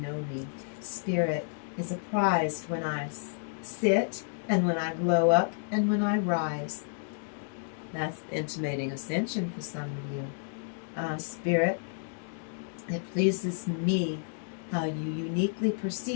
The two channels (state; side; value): silent; right; digital silence